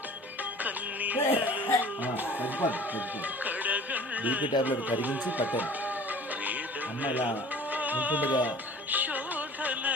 బీపీ టాబ్లెట్ కరిగించి పట్టాను. అమ్మ ఇలా ఉంటుండగా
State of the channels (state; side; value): normal; both; correlation 0.46